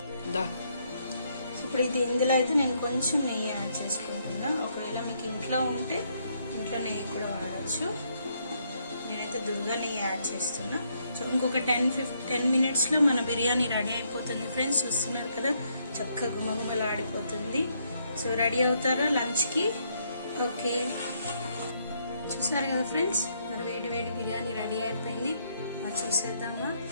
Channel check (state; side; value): inverted; both; correlation -0.74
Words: ఇప్పుడు ఇందులో అయితే నేను కొంచెం నెయ్యి యాడ్ చేసుకుంటున్నా. ఒకవేళ మీకు ఇంట్లో ఉంటే ఇంట్లో నెయ్యి కూడా వాడచ్చు. నేనైతే దుర్గా నెయ్యి యాడ్ చేస్తున్నా. సో ఇంకొక 10 మినిట్స్లో మన బిర్యానీ రెడీ అయిపోతుంది ఫ్రెండ్స్. చూస్తున్నారు కదా చక్కగా గుమగుమలు ఆడిపోతుంది. సో రెడీ అవుతారా లంచ్కి? ఓకే, చూసారు కదా ఫ్రెండ్స్, మరి వేడి వేడి బిర్యానీ రెడీ అయిపోయింది. మరి చూసేద్దామా?